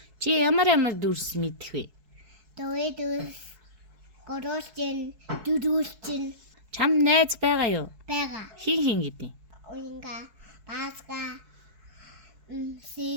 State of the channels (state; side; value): late; left; 4.6 ms